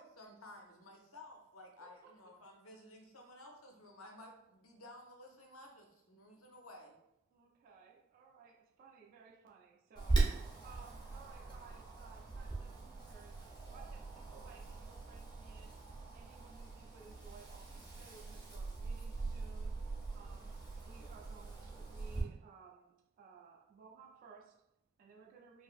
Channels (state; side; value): quieter; left; 3.1 dB